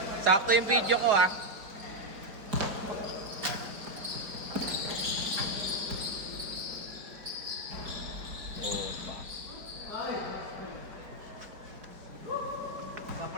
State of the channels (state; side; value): late; left; 4.8 ms